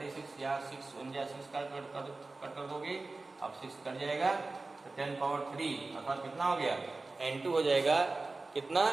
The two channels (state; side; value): quieter; left; 3.5 dB